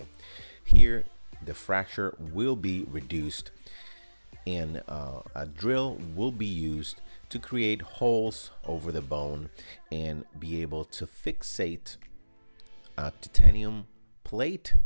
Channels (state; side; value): inverted; both; correlation -1.00